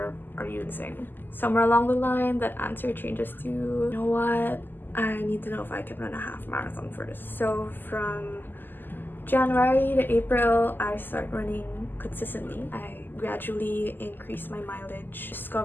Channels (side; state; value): right; late; 0.091 ms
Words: Are you insane? Somewhere along the line, that answer changes to, you know what? I need to know if I can run a half marathon first. So from January to April, I start running consistently. I gradually increase my mileage,